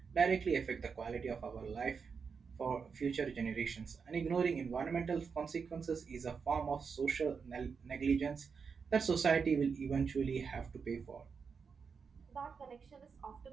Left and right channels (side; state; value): left; quieter; 5.7 dB